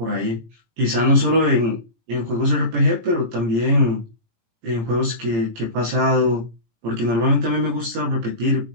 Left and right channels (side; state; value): left; late; 18 ms